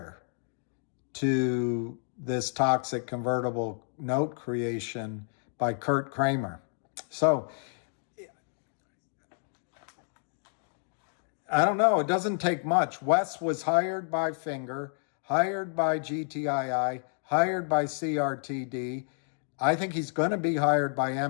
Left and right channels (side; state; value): right; silent; 58 dB below the other